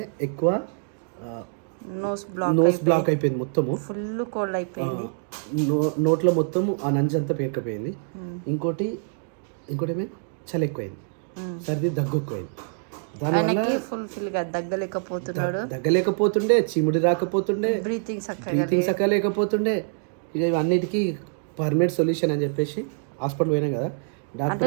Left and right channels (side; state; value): left; silent; digital silence